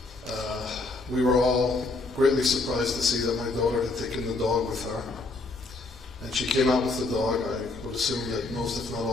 We were all greatly surprised to see that my daughter had taken the dog with her. And she came out with the dog. I would assume that most, if not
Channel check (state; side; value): quieter; right; 3.3 dB